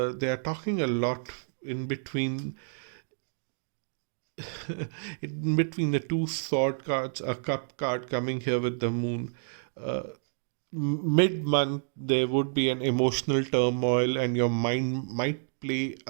are talking a lot in between in between the two sword cards, a cup card coming here with the Moon. Mid month, there would be an emotional turmoil, and your mind might play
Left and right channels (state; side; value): silent; left; digital silence